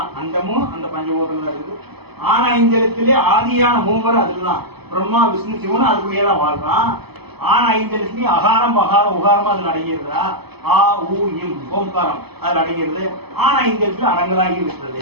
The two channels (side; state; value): left; late; 0.97 ms